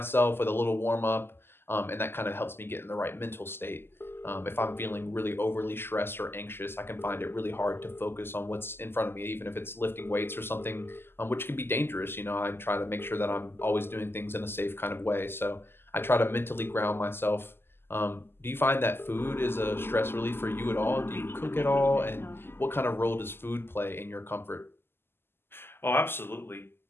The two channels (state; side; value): late; right; 0.11 ms